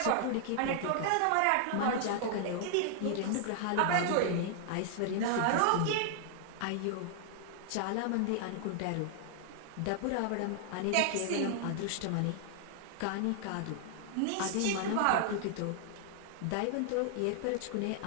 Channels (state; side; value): different; both; correlation -0.01